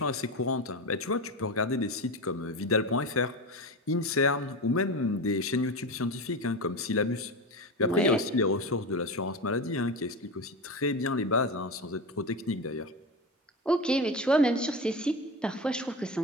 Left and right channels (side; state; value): both; normal; correlation 0.22